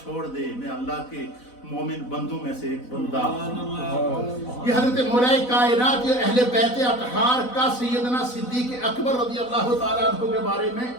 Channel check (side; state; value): right; late; 4.0 ms